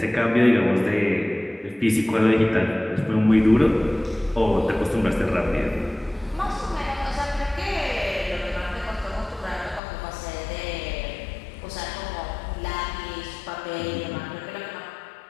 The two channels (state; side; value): drops out; right; at 9.8 s